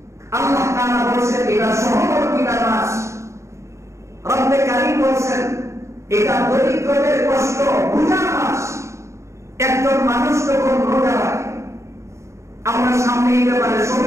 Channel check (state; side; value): late; left; 0.14 ms